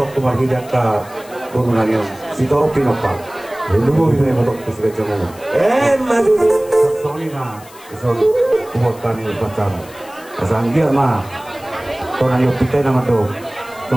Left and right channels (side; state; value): left; noise; hiss, 22 dB below the sound